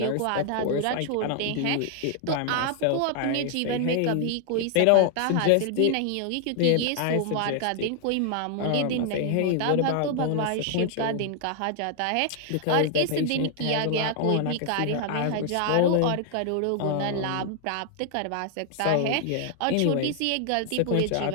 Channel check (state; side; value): different; both; correlation 0.00